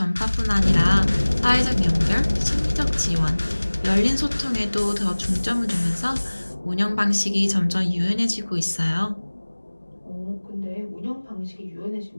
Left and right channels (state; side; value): inverted; both; correlation -1.00